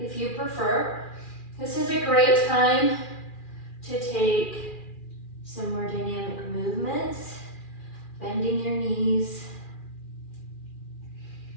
you prefer. This is a great time to take some more dynamic movements, bending your knees,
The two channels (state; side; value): late; right; 2.4 ms